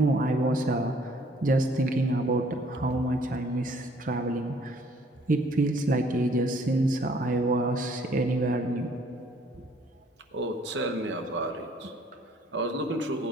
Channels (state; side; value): normal; both; correlation 0.60